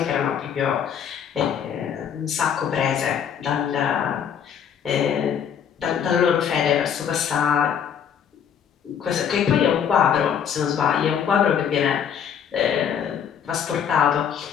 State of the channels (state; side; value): quieter; right; 8.1 dB